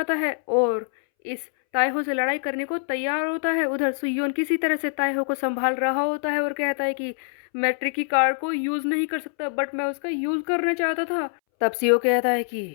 है और इस ताएहो से लड़ाई करने को तैयार होता है। उधर सुयोन किसी तरह से ताएहो को संभाल रहा होता है और कहता है कि मैं ट्रिकी कार्ड को यूज़ नहीं कर सकता, बट मैं उसका यूज़ करना चाहता था। तब सियो कहता है कि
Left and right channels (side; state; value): right; silent; 62 dB below the other